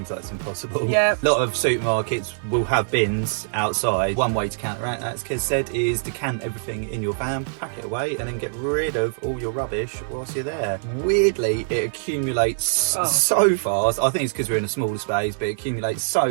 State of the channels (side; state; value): left; silent; 63 dB below the other